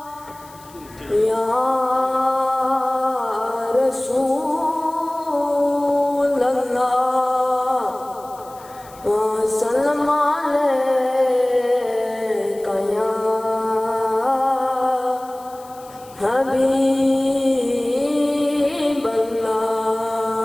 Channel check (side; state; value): left; noise; hiss, 24 dB below the sound